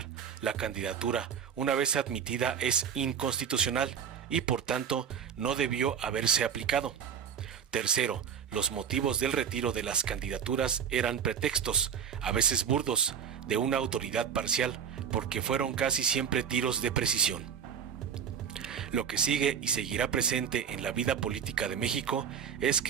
la candidatura una vez admitida es inconstitucional y por tanto no debió haberse aplicado. Tercero, los motivos del retiro de las candidaturas eran pretextos, a veces burdos, de una autoridad parcial, porque fueron casi siempre tiros de precisión. Lo que sigue y seguirá presente en la vida política de México es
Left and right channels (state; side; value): quieter; left; 7.7 dB